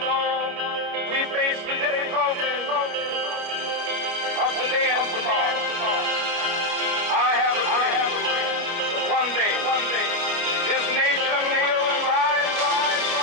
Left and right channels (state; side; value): late; left; 29 ms